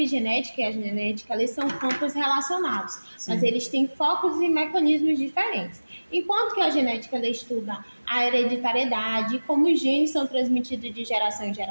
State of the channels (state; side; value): inverted; both; correlation -1.00